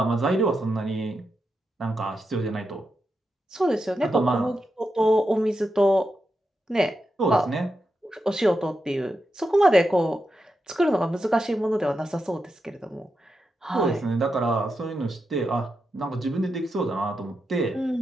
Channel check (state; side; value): normal; both; correlation 0.87